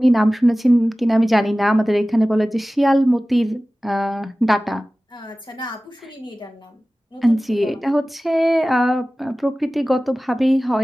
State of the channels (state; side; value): normal; both; correlation 0.97